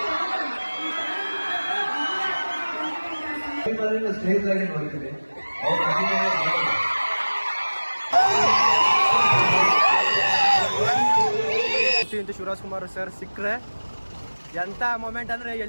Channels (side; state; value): both; inverted; correlation -1.00